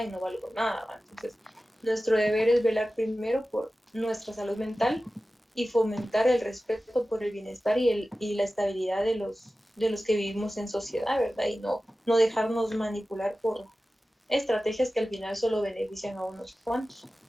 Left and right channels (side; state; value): both; normal; correlation 0.95